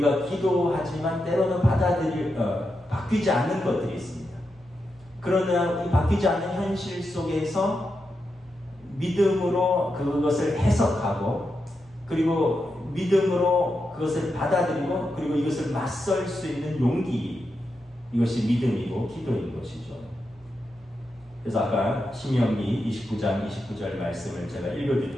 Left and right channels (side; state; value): both; normal; correlation 0.87